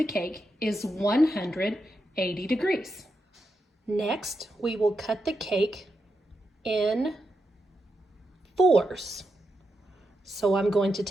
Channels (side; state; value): both; normal; correlation 0.86